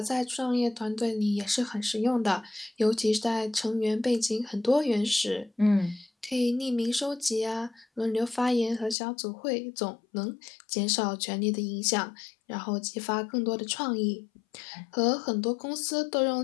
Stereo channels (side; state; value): right; drops out; at 9.0 s